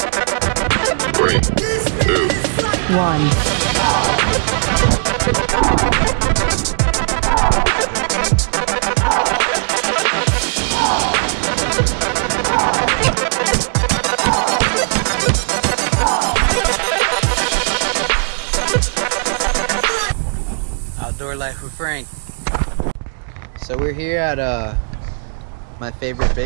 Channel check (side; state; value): left; silent; 68 dB below the other